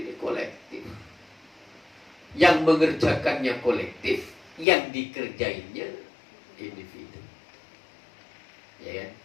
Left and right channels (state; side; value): drops out; right; at 4.7 s